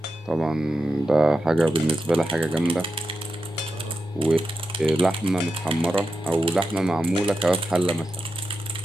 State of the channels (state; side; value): normal; both; correlation 0.89